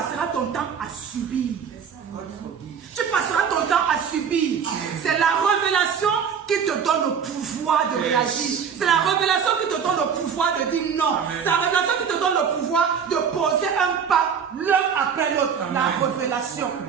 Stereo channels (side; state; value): left; quieter; 7.0 dB